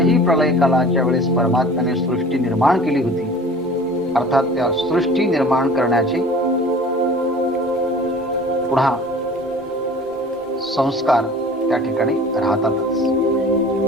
प्रलय कालाच्या वेळेस परमात्म्याने सृष्टी निर्माण केली होती. अर्थात त्या सृष्टी निर्माण करण्याचे पुन्हा संस्कार त्या ठिकाणी राहतातच.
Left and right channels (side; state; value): both; normal; correlation 0.44